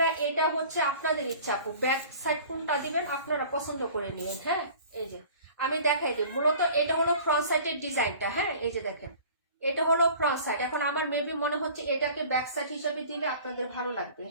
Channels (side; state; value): both; inverted; correlation -0.46